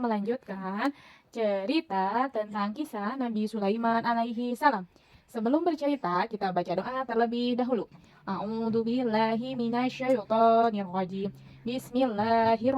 melanjutkan cerita tentang kisah Nabi Sulaiman alaihi salam. Sebelum bercerita, kita baca doa terlebih dahulu. A'udzu billahi minasyaitonir rajim.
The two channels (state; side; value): identical; both; correlation 1.00